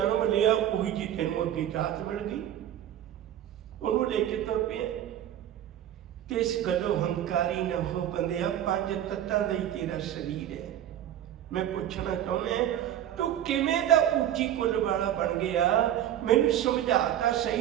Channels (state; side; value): quieter; left; 11.2 dB